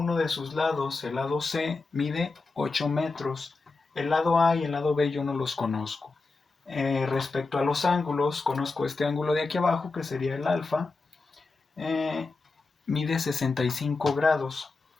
de sus lados, el lado C mide 8 metros, el lado A y el lado B yo no los conozco. Respecto a los ángulos, conozco este ángulo de aquí abajo, que sería el alfa, eh, mide 65 grados.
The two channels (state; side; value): quieter; right; 3.8 dB